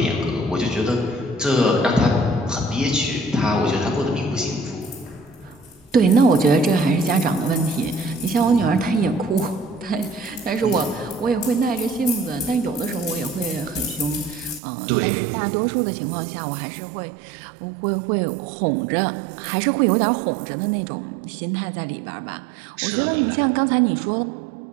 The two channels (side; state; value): left; drops out; at 14.6 s